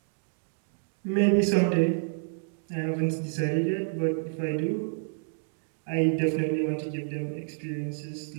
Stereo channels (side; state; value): left; silent; digital silence